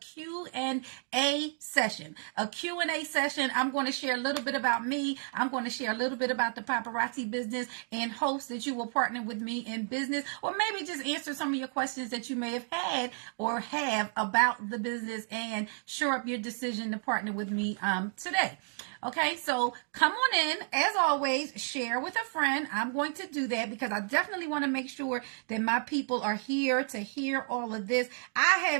session. A Q&A session. I'm going to share a little bit about me. I'm going to share a little bit about the paparazzi business and hopes that you will partner with me in business, or maybe just answer some of your questions that you may have had or have about the business and shore up your decision to partner with me today. Okay, so come on in. As always, share with a friend. I'm going to do that because I definitely want to make sure that my people are here to hear all of this. I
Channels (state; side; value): silent; left; 57 dB below the other